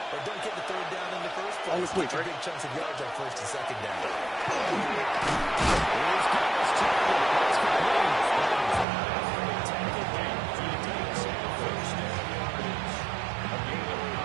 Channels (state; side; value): drops out; left; at 8.8 s